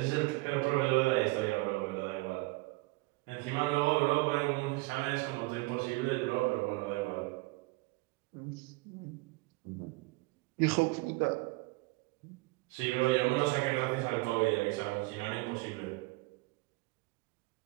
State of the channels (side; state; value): left; quieter; 23.8 dB